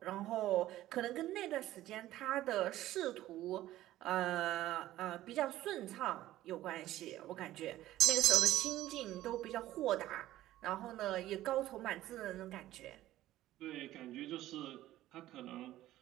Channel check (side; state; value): left; quieter; 14.7 dB